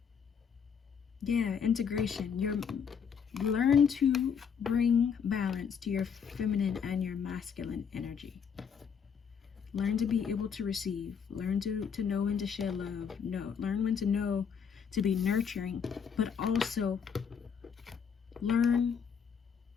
Yeah, integration. Learn to bring balance to your feminine and your masculine energy. Learn to be able to receive. Learn to know when to share love. Learn when to know to be nurturing, but also learn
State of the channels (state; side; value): quieter; right; 6.9 dB